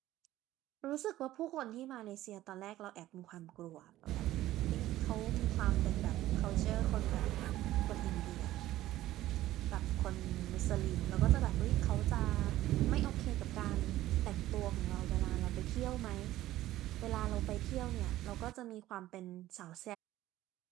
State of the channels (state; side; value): quieter; left; 15.0 dB